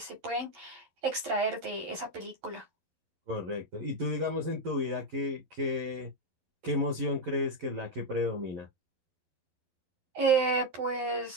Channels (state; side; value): late; left; 11 ms